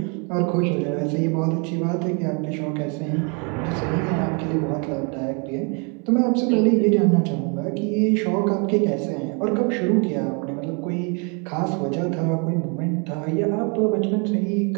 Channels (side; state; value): left; quieter; 34.9 dB